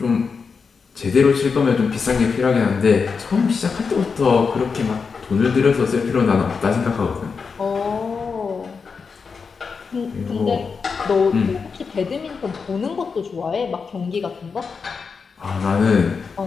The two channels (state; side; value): quieter; right; 5.3 dB